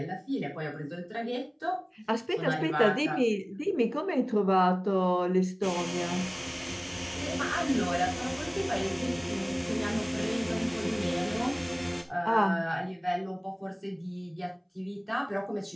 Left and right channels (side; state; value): both; identical; correlation 1.00